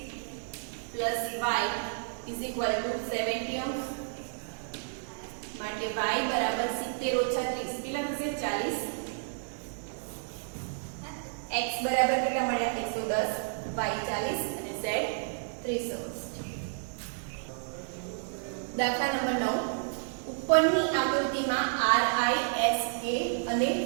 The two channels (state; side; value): silent; left; digital silence